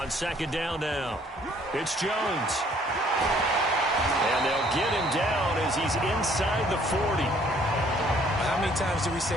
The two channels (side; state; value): both; normal; correlation 0.61